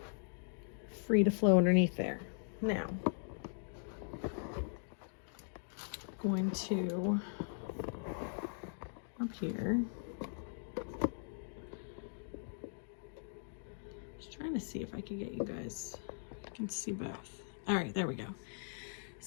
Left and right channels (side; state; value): right; silent; digital silence